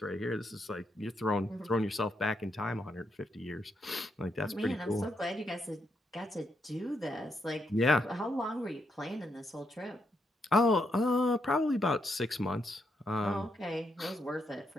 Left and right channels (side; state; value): both; normal; correlation 0.79